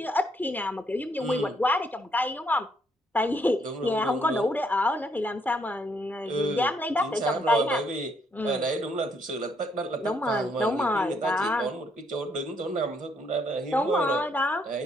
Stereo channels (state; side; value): normal; both; correlation 0.71